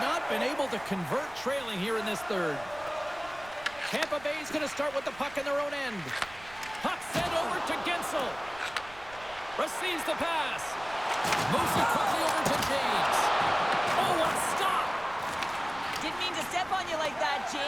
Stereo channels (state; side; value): noise; right; rumble, 21 dB below the sound